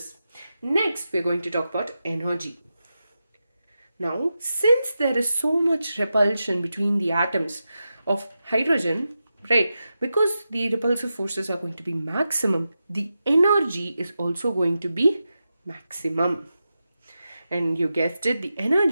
Next, we're going to talk about energy. Now, since there is so much repulsion between the atoms of hydrogen, right, because the repulsive forces are going to be maximum, the energy is also going to be maximum. And you guessed it, the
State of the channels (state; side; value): inverted; both; correlation -0.90